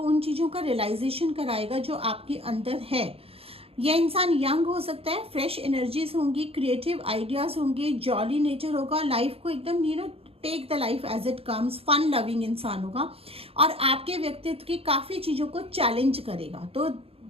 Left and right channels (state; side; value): late; left; 0.28 ms